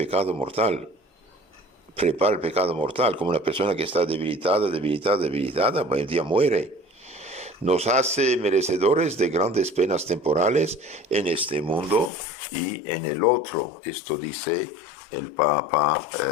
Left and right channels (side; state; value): right; drops out; at 12.1 s